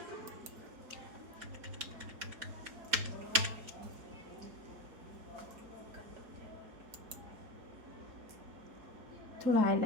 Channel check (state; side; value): late; left; 4.2 ms